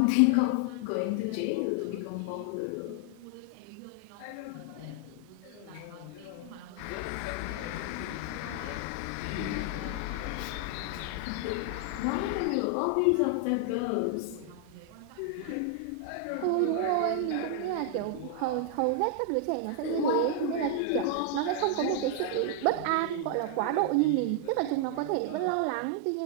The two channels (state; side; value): different; both; correlation 0.00